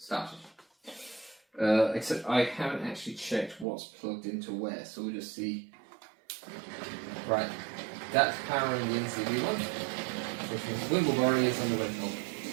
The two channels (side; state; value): left; drops out; at 3.7 s